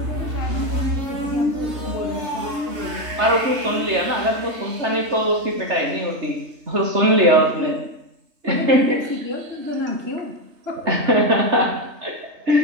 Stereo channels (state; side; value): late; left; 3.3 ms